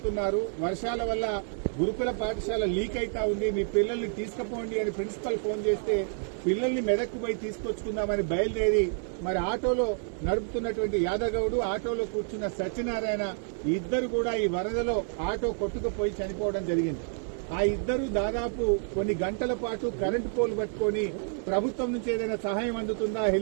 వర్షాల వల్ల గురుకుల పాఠశాల లీక్ అయితా ఉంది, మీ పిల్లల్ని తీసుకుపోండి అని ప్రిన్సిపల్ ఫోన్ చేస్తే పిల్లల్ని మెదక్కు పోయి తీసుకొచ్చుకుందామని బయలుదేరి మరి ఆటోలో నడుపుతున్నటువంటి యాదగౌడు, ఆటోలో కూర్చున్న సత్యనారాయణ ఇద్దరు కూడా ఈ వరదలో ఆటో కొట్టుకుపోయి చనిపోవడం జరిగింది. ఆ ఇద్దరు దాదాపు కొన్ని గంటల పాటు కరెంటు పోల్ పట్టుకొని ప్రభుత్వం నుంచి ఏదైనా సహాయం అందుతుందా,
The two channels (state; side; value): silent; left; 59 dB below the other